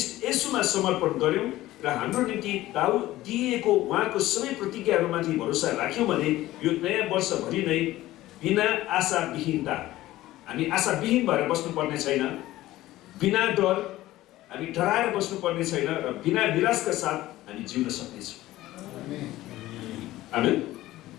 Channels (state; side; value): quieter; right; 16.1 dB